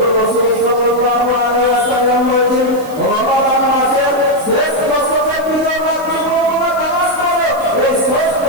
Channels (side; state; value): right; noise; hiss, 21 dB below the sound